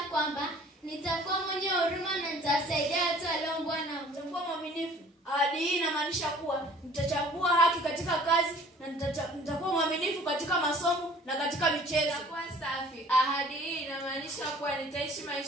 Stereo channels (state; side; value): normal; both; correlation 0.51